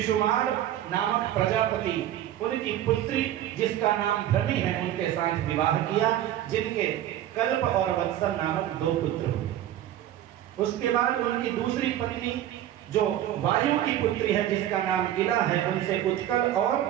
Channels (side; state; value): left; quieter; 12.2 dB